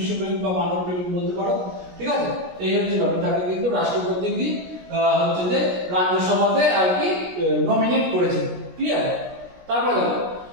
বা মানব প্রেমিক বলতে পারো, ঠিক আছে। এই হচ্ছে ব্যাপার, তাকে কিন্তু রাষ্ট্রপতি কি হচ্ছে যে রাজ্যসভাতে আর কি নমিনেট করেছে, ক্লিয়ার। তারপর দেখো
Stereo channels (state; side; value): late; left; 17 ms